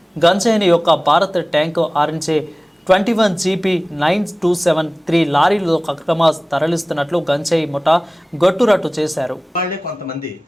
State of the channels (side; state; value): both; normal; correlation 0.98